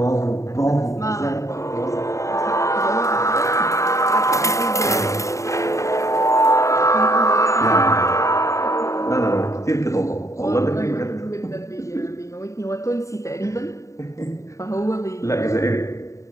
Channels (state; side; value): late; right; 0.15 ms